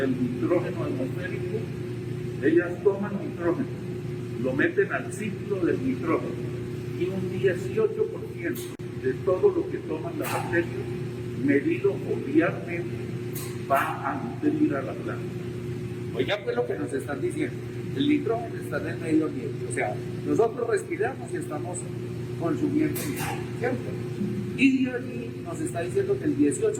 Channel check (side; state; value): both; identical; correlation 1.00